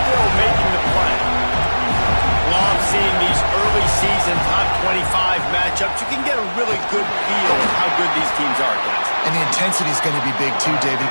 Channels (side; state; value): both; inverted; correlation -1.00